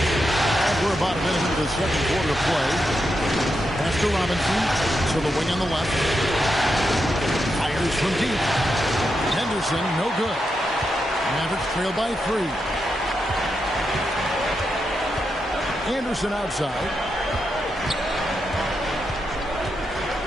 And we're about a minute into the second quarter of play. Pass to Robinson. To the wing on the left. Fires from deep. Henderson, no good. Mavericks trail by 3. Anderson outside.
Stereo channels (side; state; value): both; normal; correlation 0.85